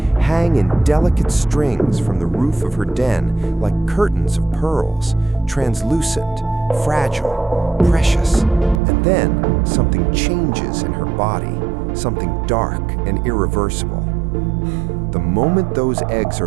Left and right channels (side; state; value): left; drops out; at 8.8 s